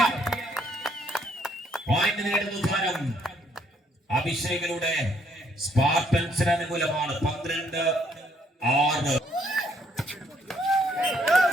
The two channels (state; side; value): normal; both; correlation 0.68